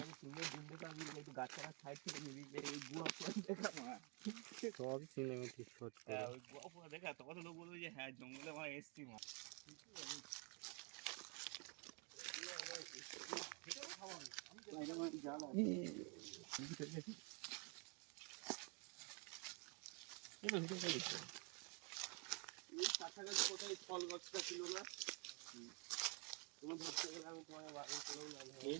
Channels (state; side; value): quieter; left; 34.1 dB